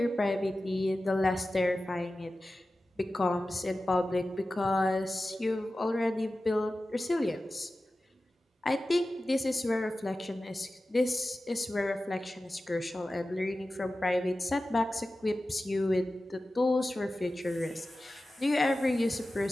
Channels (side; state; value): both; normal; correlation 0.95